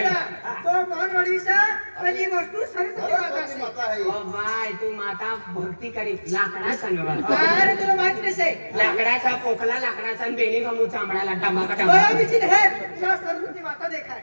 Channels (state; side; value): inverted; both; correlation -1.00